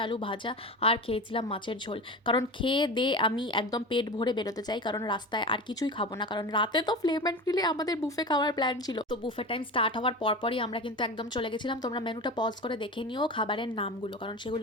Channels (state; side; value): normal; both; correlation 0.29